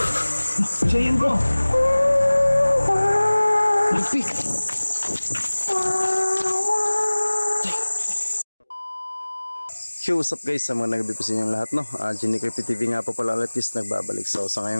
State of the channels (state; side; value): inverted; both; correlation -1.00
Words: Siya yun bro. Lupit. Yo, what's up guys, sa mga nagabi po sa inyong lahat, no? Genie Creepy TV nga po pala ulit guys, nagbabalik. So sa